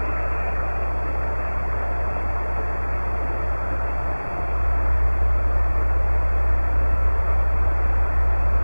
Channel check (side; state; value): both; inverted; correlation -1.00